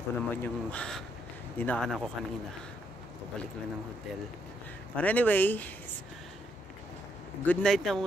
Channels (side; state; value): both; normal; correlation 0.76